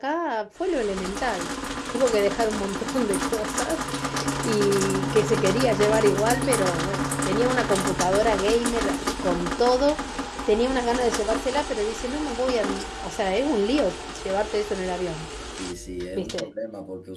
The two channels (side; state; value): both; identical; correlation 1.00